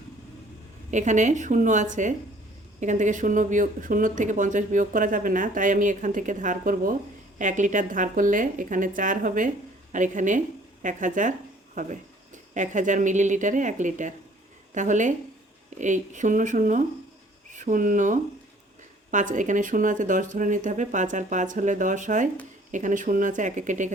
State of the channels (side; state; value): both; normal; correlation 0.56